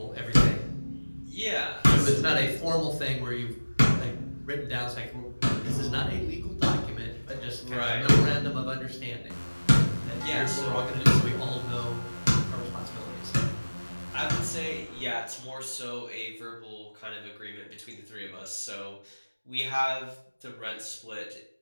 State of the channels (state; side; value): inverted; both; correlation -1.00